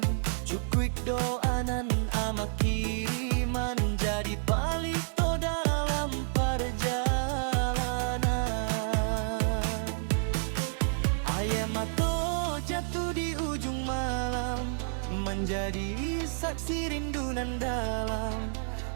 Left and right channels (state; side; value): silent; left; 58 dB below the other